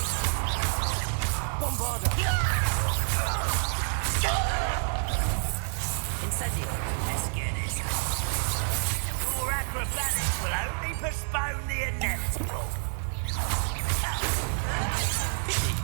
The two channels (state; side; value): silent; left; 59 dB below the other